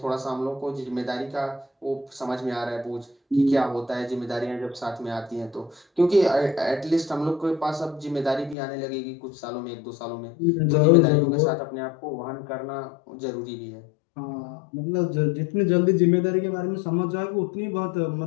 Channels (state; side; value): drops out; right; at 8.6 s